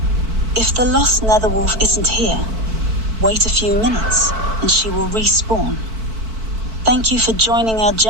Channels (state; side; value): late; left; 4.5 ms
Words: If the lost Netherwolf isn't here, wait a few minutes and she will respawn. Thank you for joining our